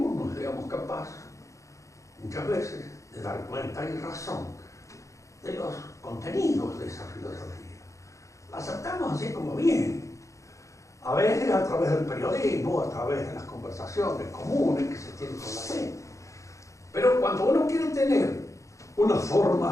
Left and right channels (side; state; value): right; late; 0.15 ms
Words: no seamos capaces muchas veces de dar cuenta y razón de los contenidos de esa filosofía. La aceptamos así como viene, a veces a través del periodismo, a través de las conversaciones comunes que se tienen con la gente. Pero cuando uno quiere tener una